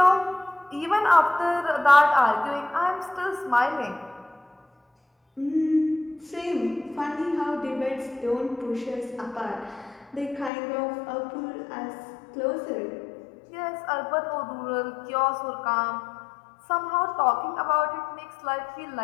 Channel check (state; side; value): drops out; right; at 10.5 s